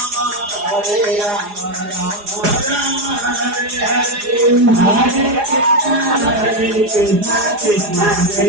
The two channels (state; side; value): late; left; 4.8 ms